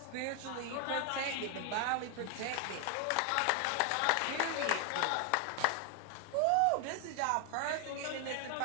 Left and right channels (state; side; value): different; both; correlation 0.00